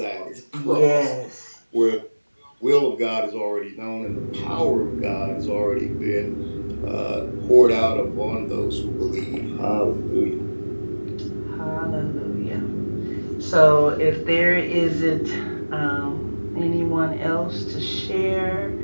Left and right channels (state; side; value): inverted; both; correlation -1.00